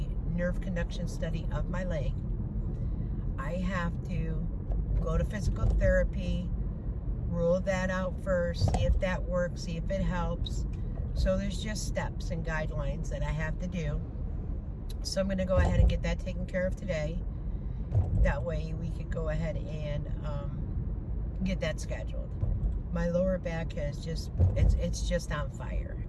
nerve conduction study of my leg, I have to go to physical therapy, rule that out first, see if that works, see if it helps. So there's just steps and guidelines that I have to do. So I'm going to go ahead and get that taken care of today. That way we could go ahead and get that scheduled. My lower back has just, it's just on fire.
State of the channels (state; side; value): identical; both; correlation 1.00